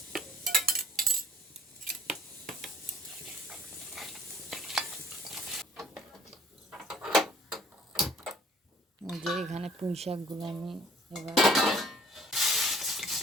যে এখানে পুঁই শাকগুলো আমি এবার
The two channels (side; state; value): both; normal; correlation 0.56